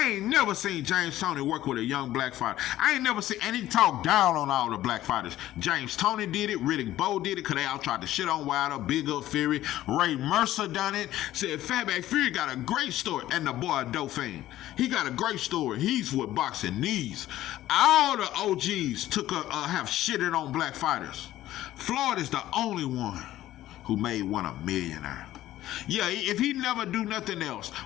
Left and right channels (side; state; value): right; quieter; 14.2 dB